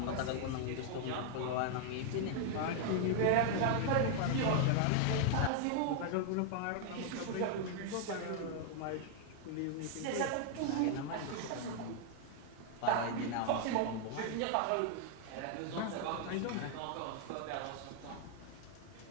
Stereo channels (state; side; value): different; both; correlation 0.00